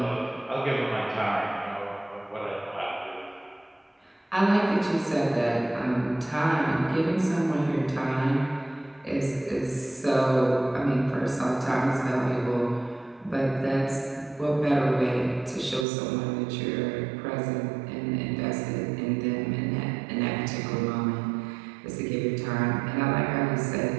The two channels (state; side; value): drops out; left; at 15.9 s